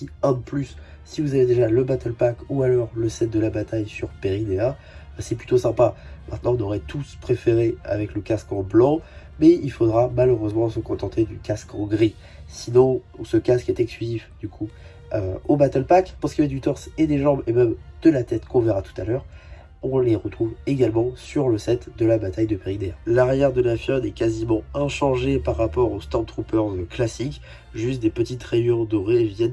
un de plus. Si vous avez déjà le Battle Pack ou alors le set de la bataille sur Peridea, c'est plutôt sympa. Maintenant, on aurait tous préféré avec le casque en blanc, mais il faudra malheureusement se contenter du casque en gris. Sinon, ce casque est exclusif du coup au Battle Pack. Pour ce qui est du torse et des jambes et même de la tête qu'on verra tout à l'heure, on les retrouve également sur le set de la bataille de Peridea. L'arrière de la figurine est quasiment inchangé par rapport aux Stormtroopers classiques, juste des petites rayures dorées viennent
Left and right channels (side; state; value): both; identical; correlation 1.00